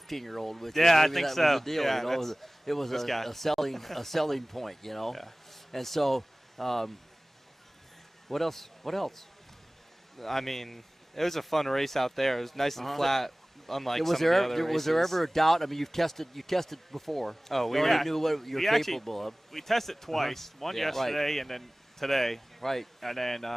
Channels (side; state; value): both; normal; correlation 0.98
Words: with you. Yeah, Maybe I think that was so. the deal. Yeah, it was a selling point. And so, what else? I mean, it was a fun race out there. It was nice and flat, unlike was some of the other races. Was there ever a doubt? I mean, you tested before. Oh, we already knew what you're capable of. We tested twice. One yesterday and then today. Right. And then